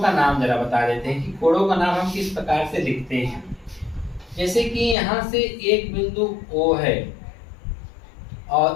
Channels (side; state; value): right; drops out; at 5.0 s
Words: नाम जरा बता देते हैं कि कोणों का नाम हम किस प्रकार से लिखते हैं। जैसे कि यहाँ से एक बिंदु O है